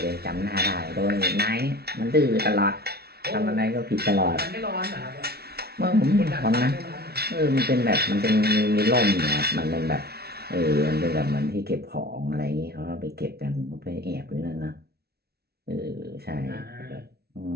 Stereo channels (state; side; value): late; left; 0.46 ms